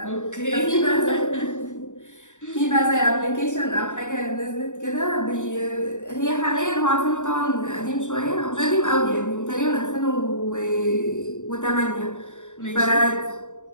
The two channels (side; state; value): right; late; 0.85 ms